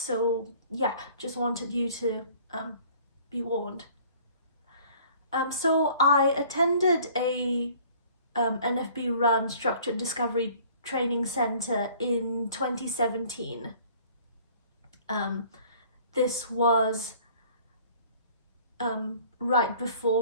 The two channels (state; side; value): inverted; both; correlation -0.53